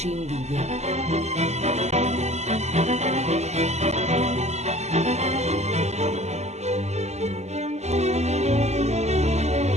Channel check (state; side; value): late; left; 0.33 ms